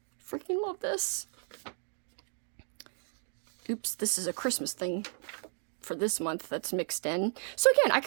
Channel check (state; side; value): silent; left; 55 dB below the other